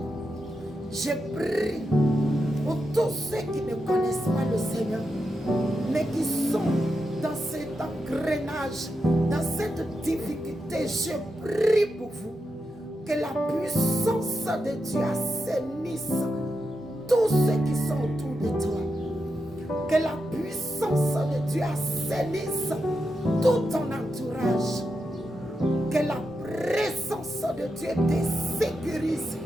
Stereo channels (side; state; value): both; normal; correlation 0.87